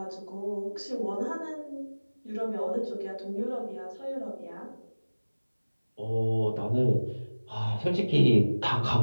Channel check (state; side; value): inverted; both; correlation -1.00